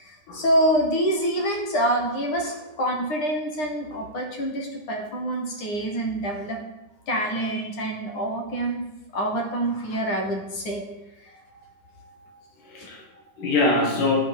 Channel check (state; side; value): late; right; 9.8 ms